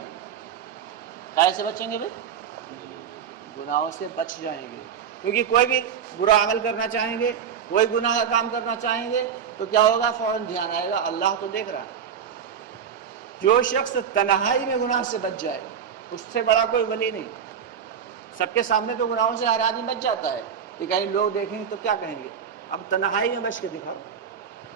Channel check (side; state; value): left; quieter; 7.8 dB